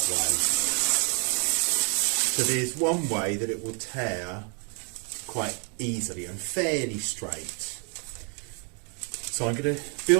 way. So there's one way that it will tear quite easily and fairly straight. So I'm going to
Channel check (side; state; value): left; quieter; 38.2 dB